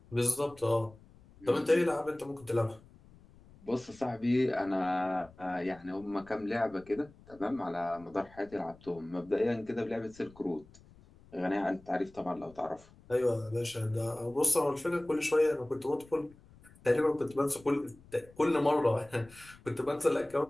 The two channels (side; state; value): left; noise; rumble, 24 dB below the sound